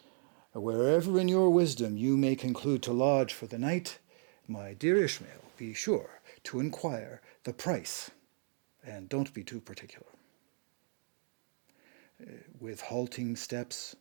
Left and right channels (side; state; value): left; silent; 54 dB below the other